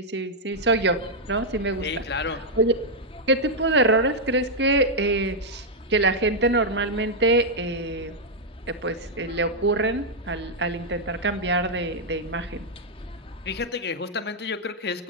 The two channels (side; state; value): both; normal; correlation -0.03